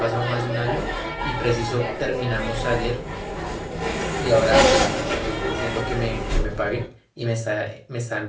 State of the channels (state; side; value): identical; both; correlation 1.00